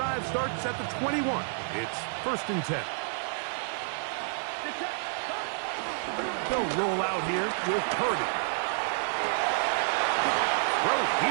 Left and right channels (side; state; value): left; silent; digital silence